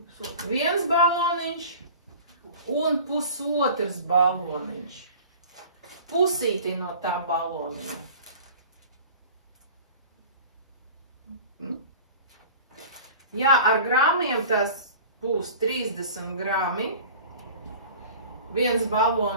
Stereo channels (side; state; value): both; inverted; correlation -0.41